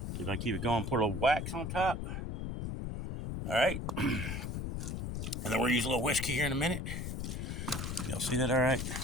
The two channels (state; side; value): noise; left; rumble, 4 dB below the sound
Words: See if I can keep it going. Put a little wax on top. All right. And then we'll use a little whiskey here in a minute. Y'all see that all right?